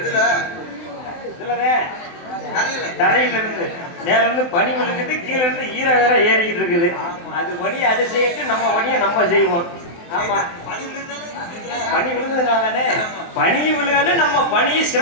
இதுலதான் தரையில இருந்து மேல இருந்து பனி விழுகுது, கீழே இருந்து ஈரம் வேற ஏறிக்கிட்டு இருக்குது. அது வழியை அதை செய்யிட்டு நம்ம வழியை நம்ம செய்வோம். ஆமா, பனி விழுந்ததுனாலே பனி விழுகாது, நம்ம பனியை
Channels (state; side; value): late; right; 23 ms